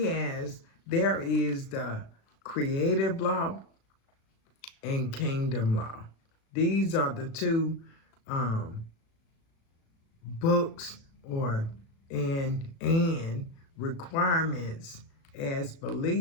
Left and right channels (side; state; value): right; late; 36 ms